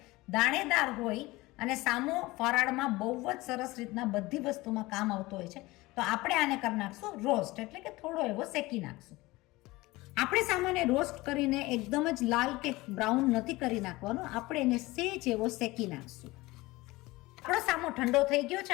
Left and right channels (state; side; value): quieter; right; 20.6 dB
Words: દાણેદાર હોય અને સામો ફરાળમાં બહુ જ સરસ રીતના બધી વસ્તુમાં કામ આવતો હોય છે. તો આપણે આને કરી નાખશું રોસ્ટ, એટલે કે થોડો એવો શેકી નાખશું. આપણે સામાન્ય રોસ્ટ કરીને એકદમ જ લાલ કે બ્રાઉન નથી કરી નાખવાનો, આપણે એને સેજ એવો શેકી નાખશું. આપણો સામો ઠંડો થઈ ગયો